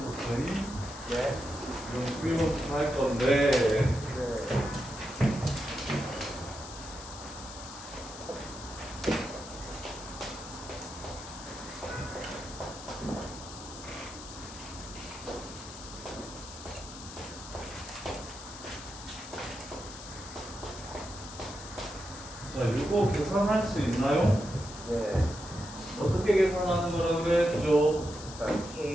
네. 11번부터 할 건데 네. 자, 이거 계산할 수 있나요? 네. 어떻게 계산하는 거라 그랬죠? 일단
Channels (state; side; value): noise; left; hiss, 13 dB below the sound